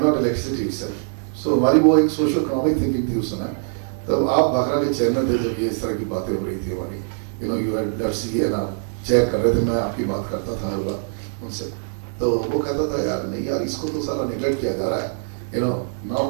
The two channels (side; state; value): left; silent; digital silence